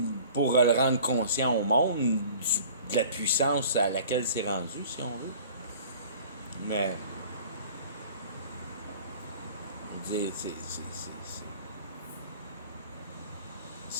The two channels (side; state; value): both; inverted; correlation -0.46